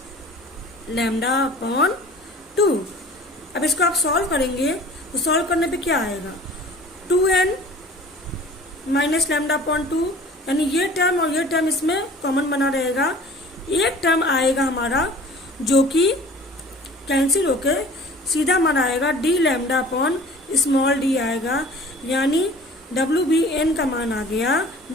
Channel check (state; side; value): normal; both; correlation 0.45